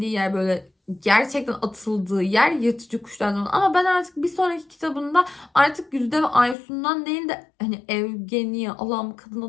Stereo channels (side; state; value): right; drops out; at 6.6 s